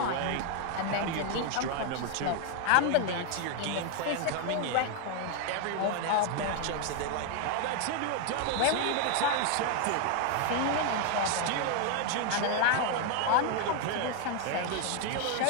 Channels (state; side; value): different; both; correlation 0.01